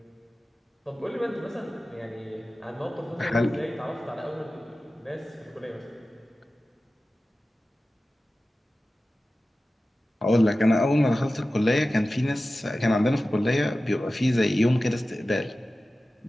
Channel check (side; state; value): both; normal; correlation 0.95